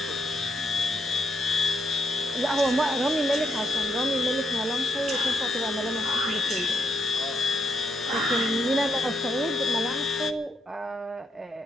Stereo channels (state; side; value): normal; both; correlation 0.78